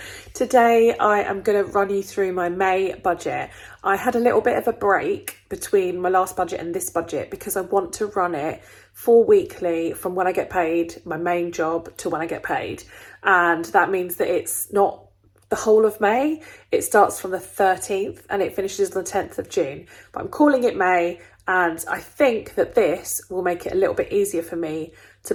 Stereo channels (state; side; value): identical; both; correlation 1.00